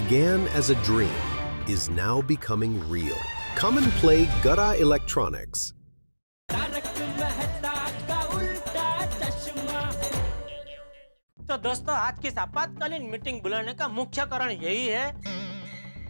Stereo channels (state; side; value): inverted; both; correlation -1.00